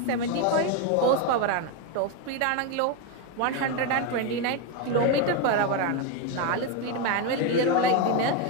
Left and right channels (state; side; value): different; both; correlation 0.02